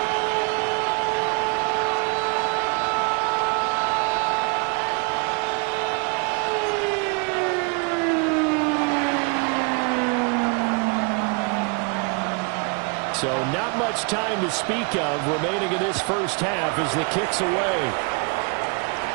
So not much time to speak of remaining in this first half as the kick's away.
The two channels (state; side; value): quieter; left; 34.2 dB